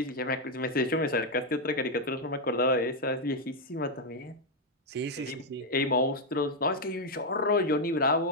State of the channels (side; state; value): both; normal; correlation 0.01